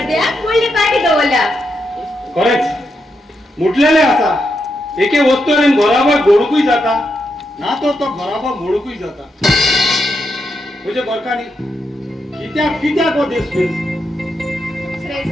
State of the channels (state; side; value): normal; both; correlation 0.83